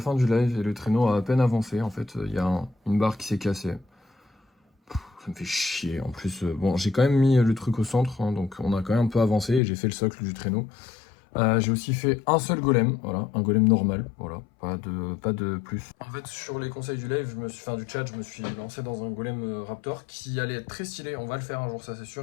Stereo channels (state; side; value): drops out; right; at 9.6 s